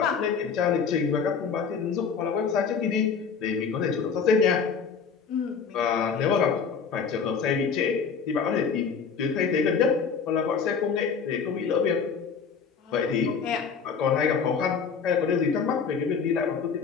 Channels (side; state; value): right; quieter; 6.0 dB